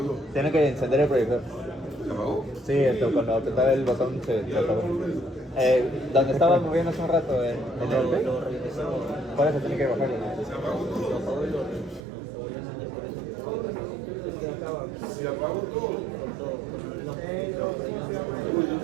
Tiene que encender el proyector. ¿Se apagó? Sí, cuando apretaba el botón se apagó. Donde estaba moviendo hace un rato, en el B. Por eso tiene que bajarlo. ¿Se apagó todo? Se apagó todo.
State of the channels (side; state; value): left; drops out; at 12.0 s